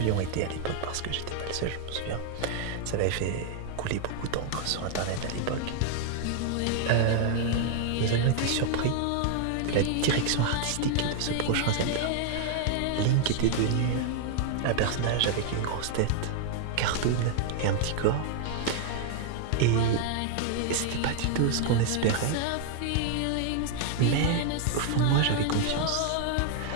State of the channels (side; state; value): both; different; correlation 0.00